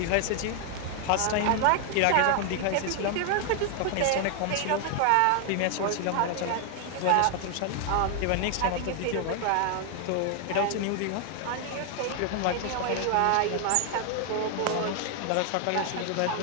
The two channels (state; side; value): different; both; correlation 0.00